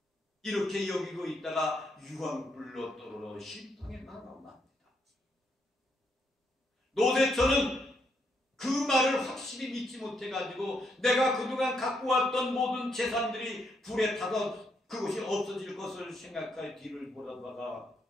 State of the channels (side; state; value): both; normal; correlation 0.77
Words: 이렇게 여기고 있다가 유황불로 떨어져 심판에 나갑니다. 노세처는 그 말을 확실히 믿지 못해가지고 내가 그동안 갖고 왔던 모든 재산들이 불에 타서 그것이 없어질 것을 생각하여 뒤를 보다가